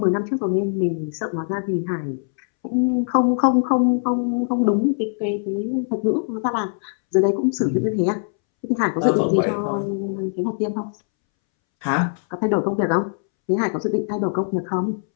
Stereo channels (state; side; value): silent; right; 64 dB below the other